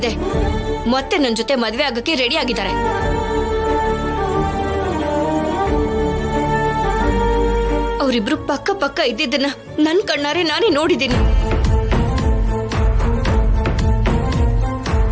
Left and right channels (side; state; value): both; identical; correlation 1.00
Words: ಮತ್ತೆ ನನ್ನ ಜೊತೆ ಮದ್ವೆ ಆಗಕ್ಕೆ ರೆಡಿ ಆಗಿದ್ದಾರೆ. ಅವರಿಬ್ರು ಪಕ್ಕ ಪಕ್ಕ ಇದ್ದಿದ್ದನ್ನ ನನ್ ಕಣ್ಣಾರೆ ನಾನೇ ನೋಡಿದ್ದೀನಿ.